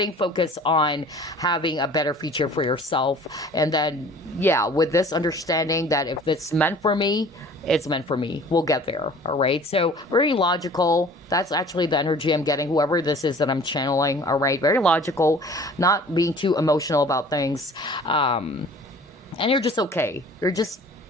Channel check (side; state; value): both; normal; correlation 0.48